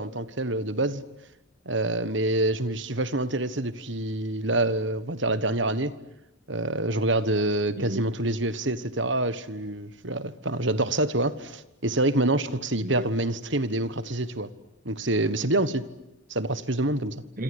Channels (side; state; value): both; normal; correlation 0.08